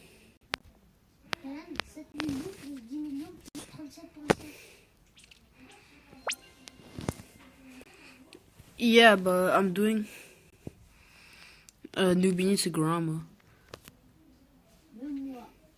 Yeah, but I'm doing Noobi To Drag.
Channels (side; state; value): both; identical; correlation 1.00